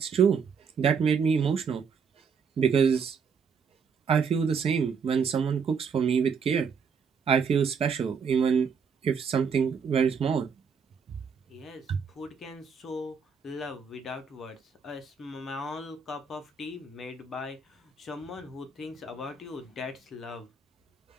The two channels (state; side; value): quieter; left; 6.0 dB